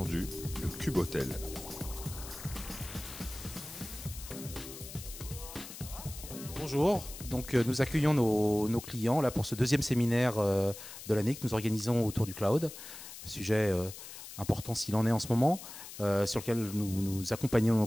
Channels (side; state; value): left; noise; hiss, 13 dB below the sound